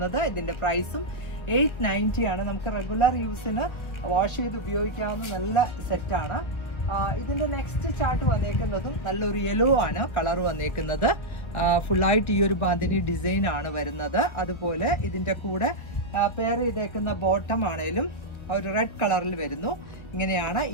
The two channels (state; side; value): late; right; 1.1 ms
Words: ഇതിന്റെ പ്രൈസും 890 ആണ്. നമുക്ക് റെഗുലർ യൂസിന് വാഷ് ചെയ്ത് ഉപയോഗിക്കാവുന്ന നല്ല സെറ്റാണ്. ഇതിന്റെ നെക്സ്റ്റ് ചാർട്ട് വന്നേക്കുന്നതും നല്ലൊരു യെല്ലോ ആണ് കളർ വന്നേക്കുന്നത്. ഫുള്ളായിട്ട് ഈ ഒരു ബാന്തിനി ഡിസൈൻ ആണ് വരുന്നത്. അതുപോലെ ഇതിന്റെ കൂടെ പെയർ ചെയ്തേക്കുന്ന ബോട്ടം ആണേലും ഒരു റെഡ് കളറിൽ വരുന്നു. ഇങ്ങനെയാണ്